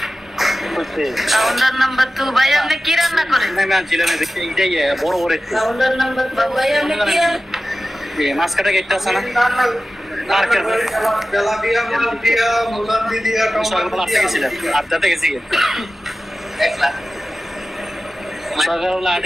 কাউন্টার নাম্বার 2 ভাই আপনি কি রান্না করেন? আমি আনছিলাম দেখি এইটাই বড় বড় একটু কাউন্টার নাম্বার 2 ভাই আপনি কি মাছ কাটা গেটটা আছে না মার্কেট তেলাপিয়া, মালপিয়া, মুলান্দি দিয়া, সকালবেলা আসতে গেছিলাম, আড্ডাতে গেছি সকালবেলা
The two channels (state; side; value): normal; both; correlation 0.94